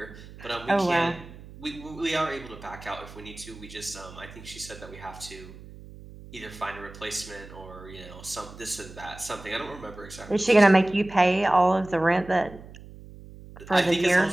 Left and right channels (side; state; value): right; noise; hum, 17 dB below the sound